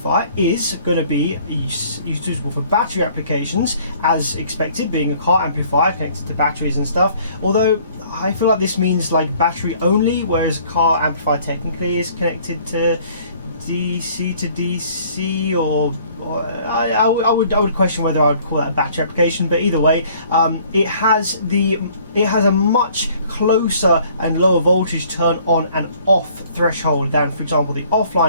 is going to be suitable for battery applications, as expected, being a car amplifier connected to batteries and stuff. Although I feel like this means like battery only, whereas a car amplifier technically is connected to DC to DC, or I would question whether I would call that a battery application. But either way, it has a much closer and lower voltage turn on and off threshold than, for example, the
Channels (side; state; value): both; inverted; correlation -0.57